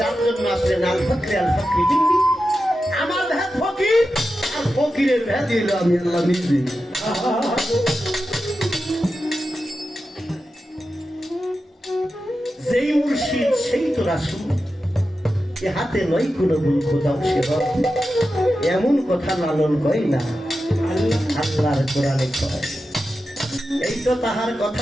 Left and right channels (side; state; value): both; normal; correlation 0.91